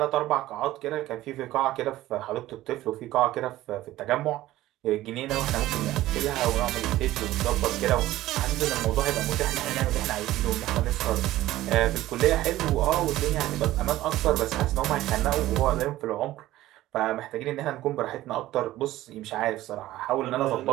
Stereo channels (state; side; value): quieter; left; 15.5 dB